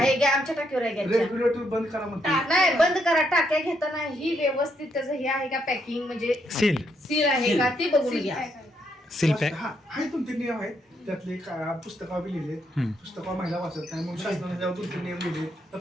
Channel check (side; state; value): both; normal; correlation 0.76